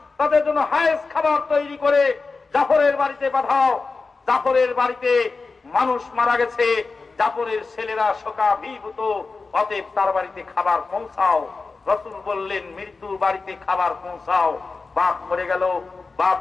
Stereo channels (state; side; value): quieter; right; 4.1 dB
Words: তাদের জন্য হায়েস খাবার তৈরি করে জাফরের বাড়িতে পাঠাও। জাফরের বাড়িতে মানুষ মারা গেছে, জাফরের ছেলেরা শোকাভিভূত, অতএব তার বাড়িতে খাবার পৌঁছাও। রাসূল বললেন মৃত্যুর বাড়িতে খাবার পৌঁছাও। বাপ মরে গেল, বাপ